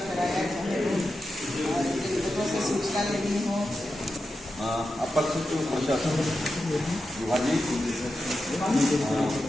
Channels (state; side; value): normal; both; correlation 0.90